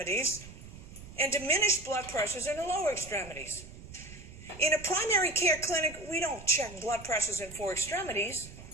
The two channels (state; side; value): noise; right; rumble, 16 dB below the sound